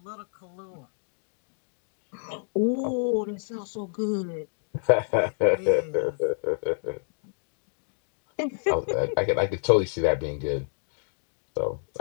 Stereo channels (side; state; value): right; silent; digital silence